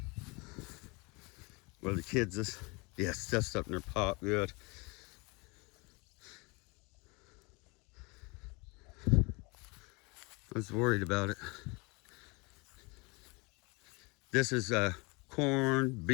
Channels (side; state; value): right; quieter; 28.0 dB